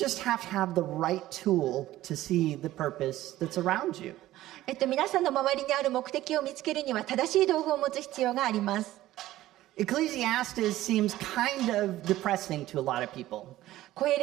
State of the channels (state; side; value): quieter; left; 15.2 dB